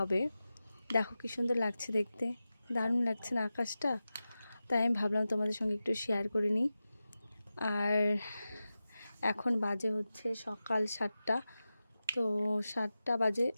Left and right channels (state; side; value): inverted; both; correlation -0.93